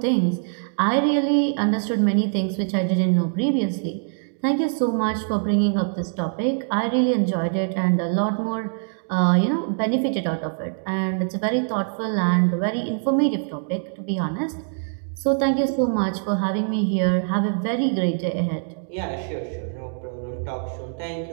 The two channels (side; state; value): left; silent; digital silence